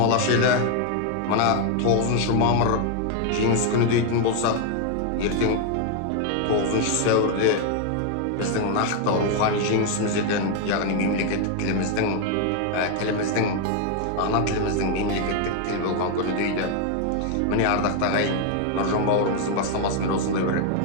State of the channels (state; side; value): different; both; correlation 0.00